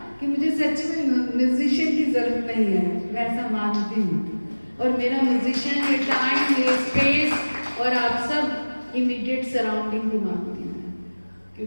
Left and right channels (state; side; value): inverted; both; correlation -1.00